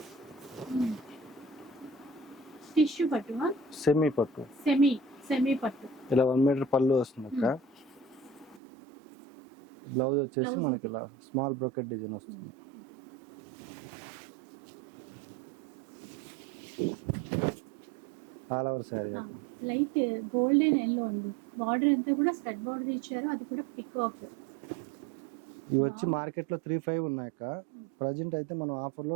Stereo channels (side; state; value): left; drops out; at 8.6 s